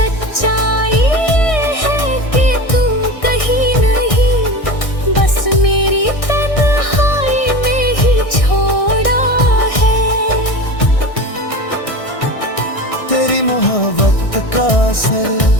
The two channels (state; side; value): late; right; 1.6 ms